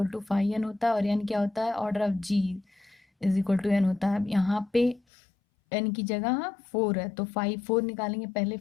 to phi N होता है, और एन क्या होता है, order of G is equal to N होता है। अब यहाँ पे एन की जगह 4 है, तो फाई 4 निकालेंगे। पहले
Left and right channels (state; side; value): drops out; right; at 5.0 s